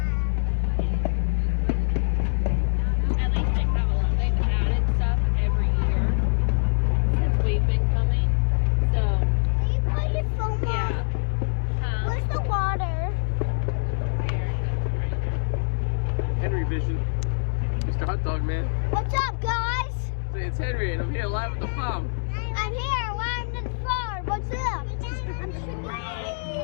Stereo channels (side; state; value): right; silent; digital silence